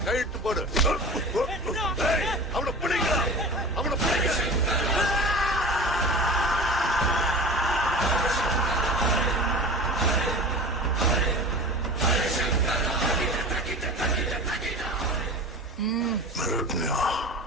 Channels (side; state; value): both; normal; correlation 0.35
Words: கைட்டு போடு. அவனை பிடிங்க, அவனை பிடிங்க.